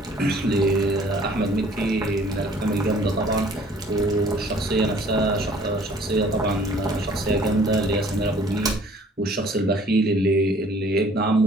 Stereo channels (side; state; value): both; normal; correlation 0.55